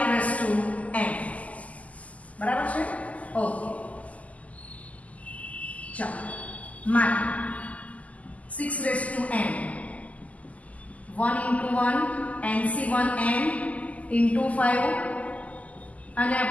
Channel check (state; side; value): late; right; 0.072 ms